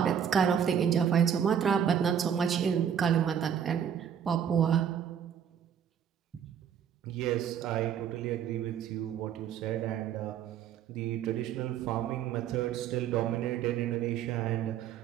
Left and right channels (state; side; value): quieter; left; 8.6 dB